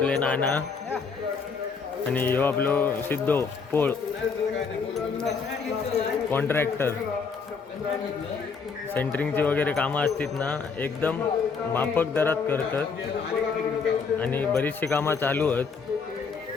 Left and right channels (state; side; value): quieter; right; 5.3 dB